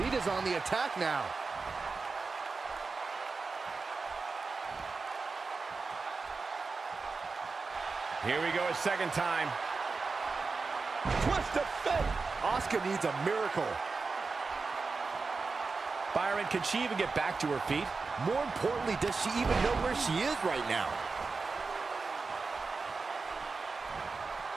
Lita's on the attack now. Here we go a second time. Twist of fate. Asuka needs a miracle. Byron, can she even get back to her feet? More importantly, does she even know where she is right now?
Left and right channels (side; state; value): left; quieter; 4.3 dB